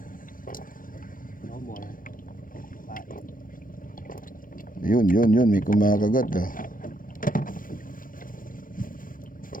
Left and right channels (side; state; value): right; late; 0.40 ms